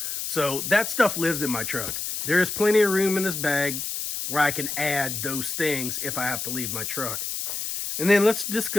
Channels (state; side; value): noise; left; hiss, 4 dB below the sound